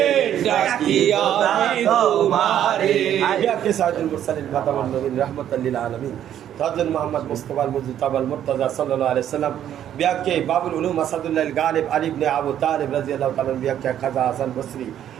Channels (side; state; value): left; quieter; 10.6 dB